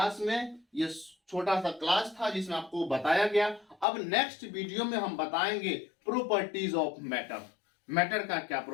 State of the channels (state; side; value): drops out; right; at 3.9 s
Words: में, ये छोटा सा क्लास था जिसमें आपको बताया गया। अब नेक्स्ट वीडियो में हम बताएंगे प्रॉपर्टीज ऑफ मैटर, मैटर का क्या